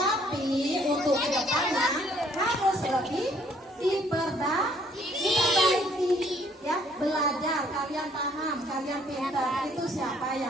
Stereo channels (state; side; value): normal; both; correlation 0.63